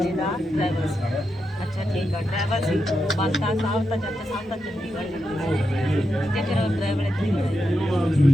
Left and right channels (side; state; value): both; normal; correlation 0.86